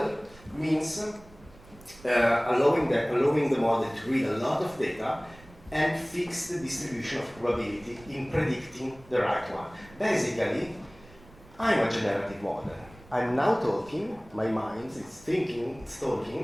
means allowing the model to read a lot of data and fix the distribution of probability in predicting the right one. Basically, I'm a generative model. I'm now talking, my mind is thinking, it's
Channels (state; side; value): noise; right; rumble, 23 dB below the sound